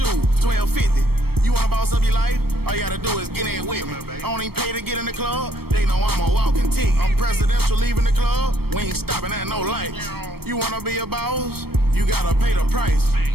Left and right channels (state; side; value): late; left; 0.96 ms